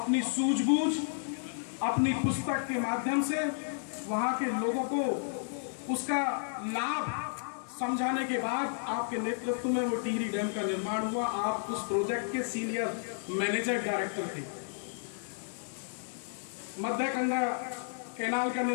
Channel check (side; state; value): right; silent; digital silence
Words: सूझबूझ अपनी पुस्तक के माध्यम से वहां के लोगों को उसका लाभ समझाने के बाद आपके नेतृत्व में वो टिहरी डैम का निर्माण हुआ। आप उस प्रोजेक्ट के सीनियर मैनेजर डायरेक्टर थे। मध्य गंगा कैनाल का